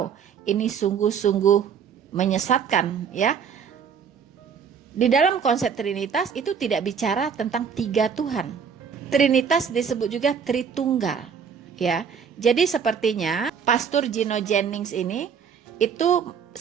ini sungguh-sungguh menyesatkan ya. Di dalam konsep Trinitas itu tidak bicara tentang 3 Tuhan. Trinitas disebut juga Tritunggal, ya. Jadi sepertinya Pastor Gino Jennings ini itu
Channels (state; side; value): quieter; left; 6.8 dB